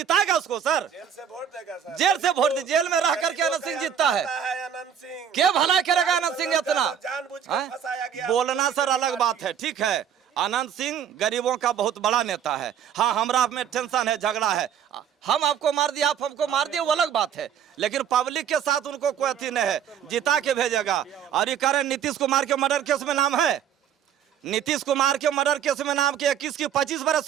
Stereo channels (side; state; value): left; quieter; 8.7 dB